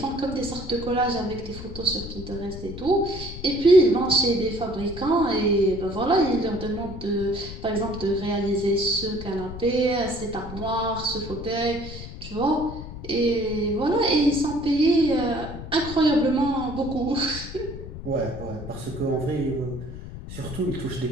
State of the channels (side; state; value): left; noise; rumble, 11 dB below the sound